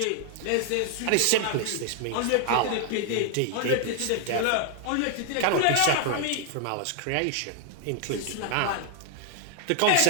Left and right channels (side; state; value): both; different; correlation 0.00